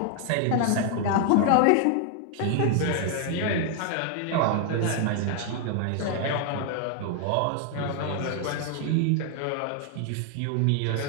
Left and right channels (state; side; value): different; both; correlation 0.00